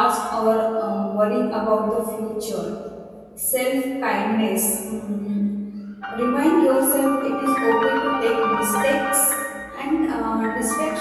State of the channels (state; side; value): identical; both; correlation 1.00